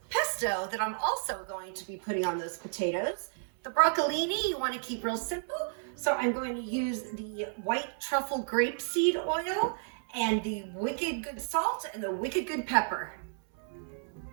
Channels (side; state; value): left; silent; 56 dB below the other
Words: pesto that I'm also going to be putting on those potatoes. The broccolini you want to keep real simple. So I'm going to use the white truffle grapeseed oil and the wicked good salt and the wicked good pepper.